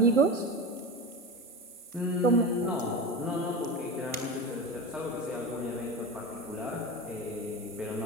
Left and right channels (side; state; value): both; normal; correlation 0.25